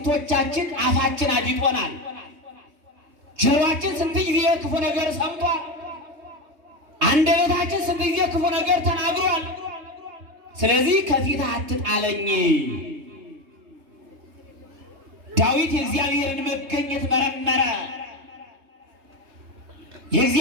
አፋችን አዲጦናል። ጆሮአችን ስንት ጊዜ ክፉ ነገር ሰምቷል። አንደበታችን ስንት ጊዜ ክፉ ነገር ተናግሯል። ስለዚህ ከፊትህ አትጣለኝ። ዳዊት የእግዚአብሔርን መገኘት መረመረ።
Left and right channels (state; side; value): late; left; 3.2 ms